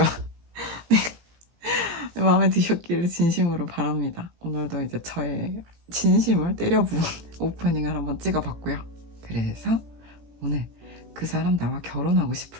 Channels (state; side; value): late; left; 17 ms